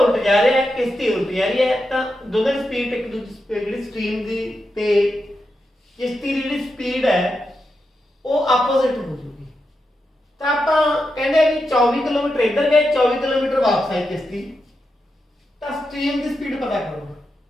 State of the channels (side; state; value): both; normal; correlation 0.87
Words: उल्ट जा रहा है, किश्ती उल्ट जा रही है, तो दोनों की स्पीड एक दूसरी स्ट्रीम की ते किश्ती की जी स्पीड है वो आपोजिट हो जाएगी, तो आप कहते हैं कि 24 किलोमीटर इधर गए, 24 किलोमीटर वापस आई किश्ती, तो स्ट्रीम की स्पीड पता करो,